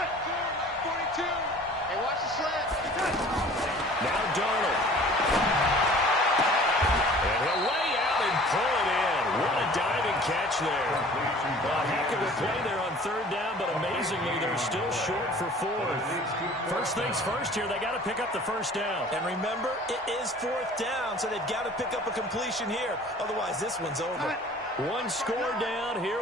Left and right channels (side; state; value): both; normal; correlation 0.48